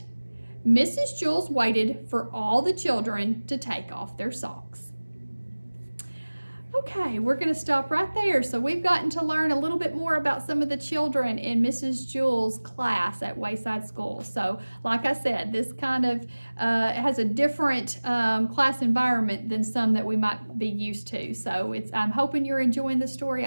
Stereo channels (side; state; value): both; inverted; correlation -1.00